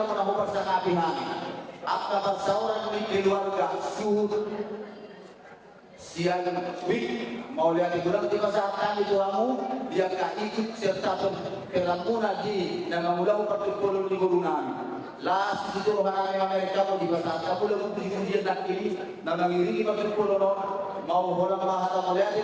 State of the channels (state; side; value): identical; both; correlation 1.00